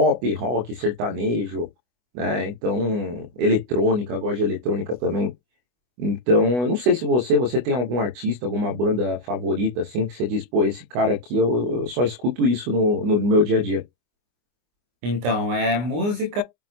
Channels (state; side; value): late; left; 24 ms